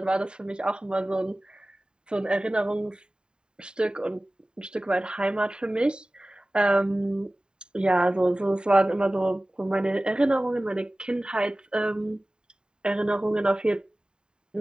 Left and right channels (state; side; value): late; left; 0.048 ms